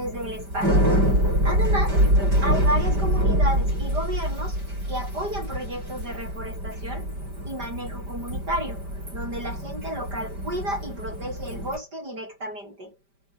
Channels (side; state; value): left; late; 5.1 ms